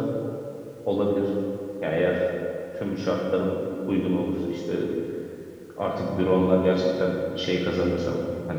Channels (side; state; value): both; identical; correlation 1.00